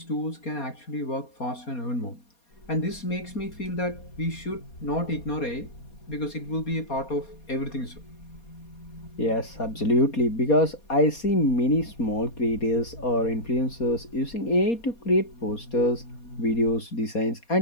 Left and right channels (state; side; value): late; right; 4.2 ms